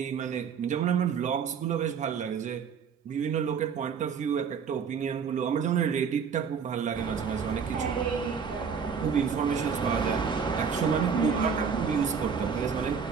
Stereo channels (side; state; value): left; quieter; 6.4 dB